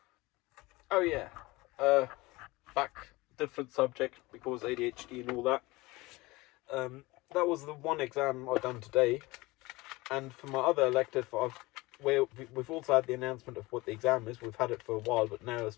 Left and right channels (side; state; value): right; quieter; 21.7 dB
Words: Oh yeah, back different subject because ADHD and all that. That was the one exam I've done today, and for my other elective, we've also had the announcement of what the exam is. We've had it for a while, but now it's